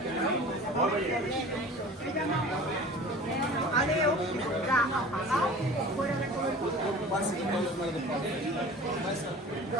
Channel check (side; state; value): both; normal; correlation 0.41